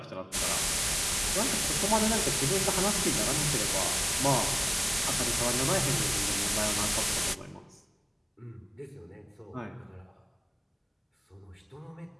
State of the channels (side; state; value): both; identical; correlation 1.00